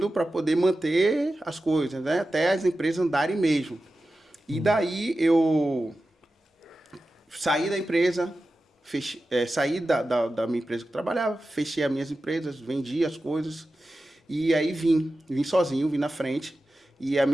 para poder manter as coisas, né? Até as empresas andarem mesmo. E daí eu saí da empresa, saí da minha empresa que eu trabalhava, fechei as minhas empresas, vendi as coisas e aí vim sozinho, vim na frente e a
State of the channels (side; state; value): both; normal; correlation 0.93